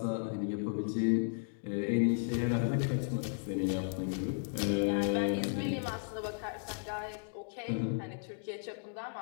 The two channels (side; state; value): right; silent; digital silence